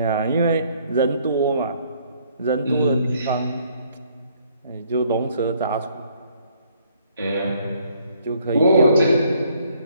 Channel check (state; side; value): inverted; both; correlation -0.65